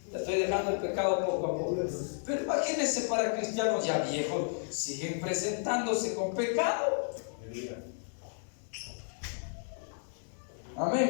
Ya estoy dejando el pecado poco a poco. Pero imagínense, para cristianos ya viejos, siguen presentándose con pecado.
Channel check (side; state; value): right; silent; 56 dB below the other